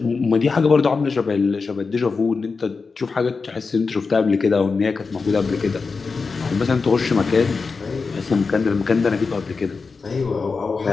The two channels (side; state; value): right; quieter; 4.6 dB